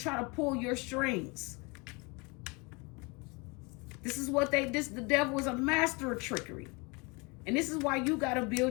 to pull your strings. This is what the devil is a master of trickery. And this is why you got to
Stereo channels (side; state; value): right; quieter; 28.6 dB